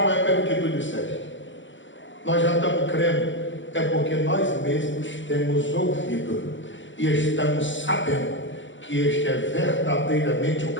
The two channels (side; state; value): right; late; 0.55 ms